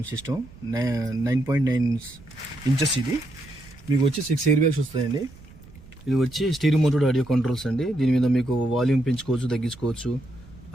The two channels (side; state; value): right; noise; rumble, 21 dB below the sound